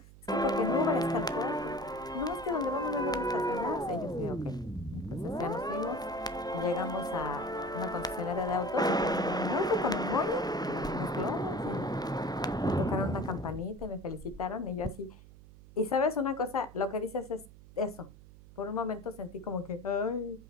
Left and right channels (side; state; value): right; noise; hum, 20 dB below the sound